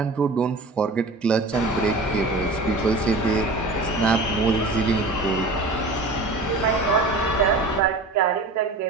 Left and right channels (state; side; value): quieter; left; 3.1 dB